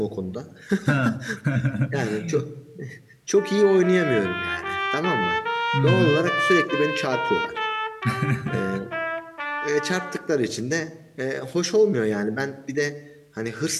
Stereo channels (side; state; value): both; identical; correlation 1.00